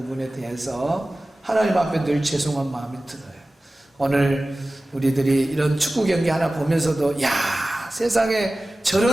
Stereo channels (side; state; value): both; normal; correlation 0.96